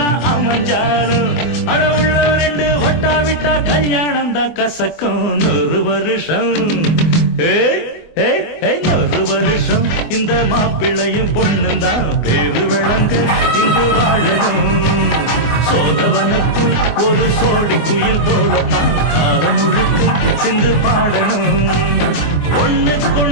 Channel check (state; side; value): late; right; 24 ms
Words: அமைஞ்சாலும் அட உள்ள 2 ஒட்டா விட்டா கல்யாணம் தான் கசக்கும். 100 வருஷம் 100 வருஷம் இந்த மாப்பிள்ளையும் பொண்ணுந்தான் பேரு விளங்க இங்கு வாழணும். சோழவனத்தில் ஒரு சோடி குயில் போலத்தான் காலம் முழுக்க சிந்து பாடணும்.